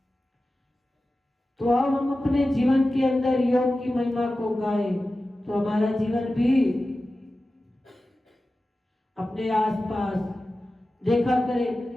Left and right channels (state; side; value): normal; both; correlation 0.94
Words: तो अब हम अपने जीवन के अंदर योग की महिमा को गाएं तो हमारा जीवन भी अपने आसपास देखा करे